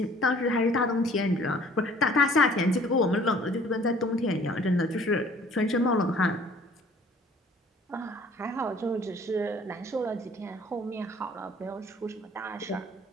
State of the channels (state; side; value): normal; both; correlation 0.54